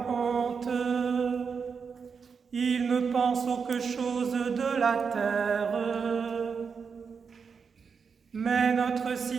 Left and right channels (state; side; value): quieter; left; 5.8 dB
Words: honte. Ils ne pensent auque chose de la terre. Mais notre